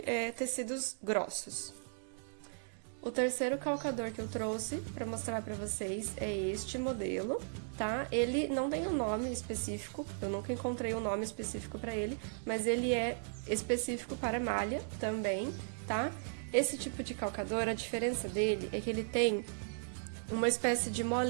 tecidos grossos. O terceiro calcador que eu trouxe para mostrar para vocês é este modelo, tá? Ele não tem um nome específico, eu nunca encontrei um nome específico para ele, mas ele é específico para malha também, tá? Esse tipo de calcador, a diferença dele é que ele tem uma espécie de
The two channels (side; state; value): left; silent; digital silence